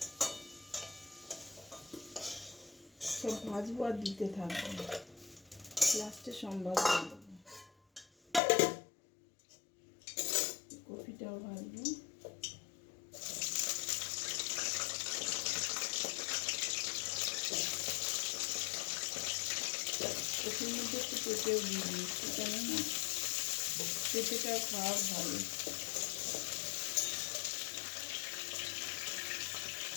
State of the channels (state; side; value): drops out; right; at 8.4 s